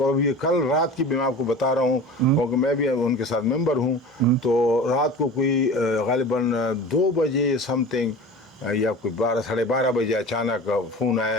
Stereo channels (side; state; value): both; normal; correlation 0.36